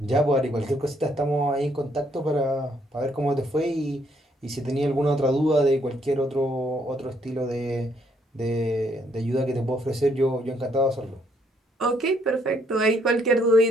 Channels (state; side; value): normal; both; correlation 0.70